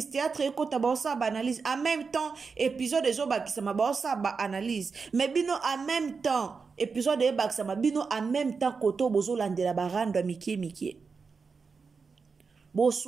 théâtre ekota baosa ba analyse en même temps épisode ezobakisama baosa ba analyse mais bino en même temps épisode ebakisama bino en même temps koto bozolandela barando mikie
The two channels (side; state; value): left; quieter; 5.0 dB